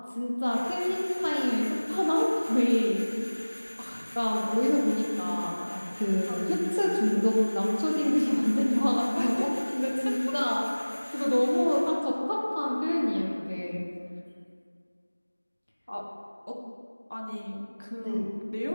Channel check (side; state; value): both; inverted; correlation -1.00